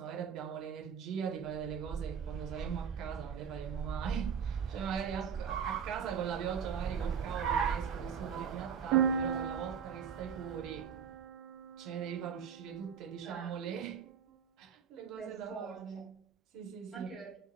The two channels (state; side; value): quieter; left; 7.3 dB